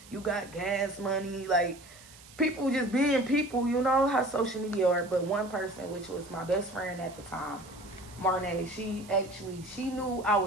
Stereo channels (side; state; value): right; noise; hiss, 21 dB below the sound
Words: You got gas money. Like, people just being people. You know how social media are. But one person, which was my best friend at the time, Marnay, she knew I